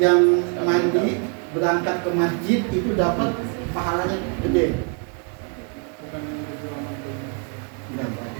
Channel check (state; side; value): quieter; left; 37.4 dB